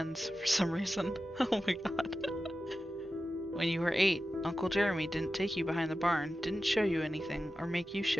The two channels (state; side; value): normal; both; correlation 0.93